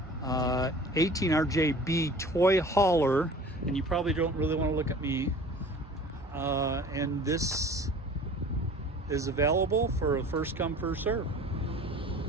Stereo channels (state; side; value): normal; both; correlation 0.44